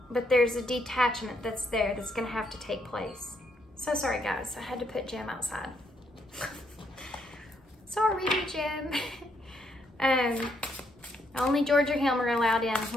but there's a detachment that's there that's going to have to take place. So sorry, guys. I had to put Jim outside. Sorry, Jim. Only George or him are allowed in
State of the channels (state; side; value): normal; both; correlation 0.75